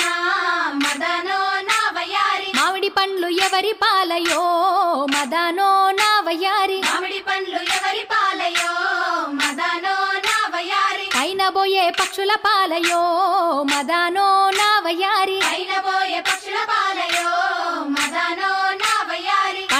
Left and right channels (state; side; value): identical; both; correlation 1.00